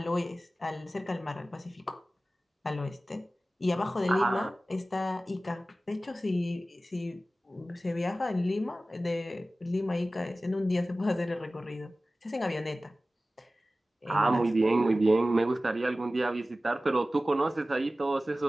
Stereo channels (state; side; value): normal; both; correlation 0.96